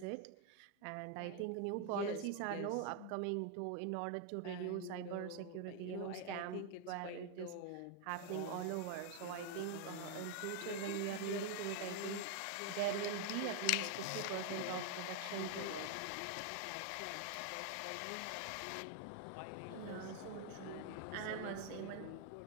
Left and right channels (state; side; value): different; both; correlation 0.01